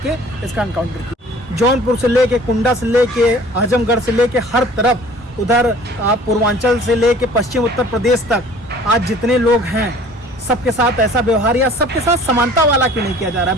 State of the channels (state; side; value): normal; both; correlation 0.49